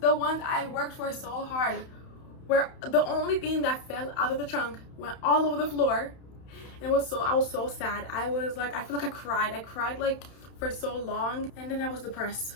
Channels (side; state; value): right; late; 31 ms